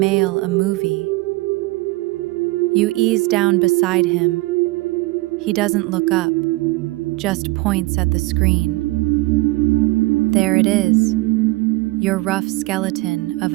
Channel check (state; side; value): quieter; left; 22.0 dB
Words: a movie? You ease down beside him. He doesn't look up, just points at the screen. There it is, your rough skeleton of